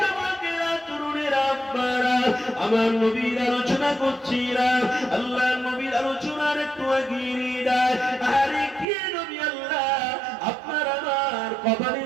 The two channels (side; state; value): left; drops out; at 8.8 s